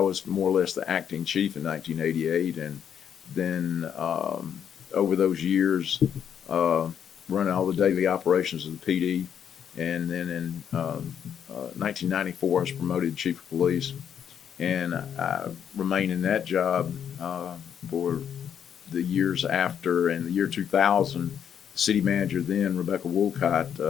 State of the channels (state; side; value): quieter; right; 8.5 dB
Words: more or less the acting chief in 1988. And then over those years, running all the daily operations of the PD. And then in 1994, I was promoted chief of police, and I remained in that job for the years after. And the year 2000, the city manager then, Rebecca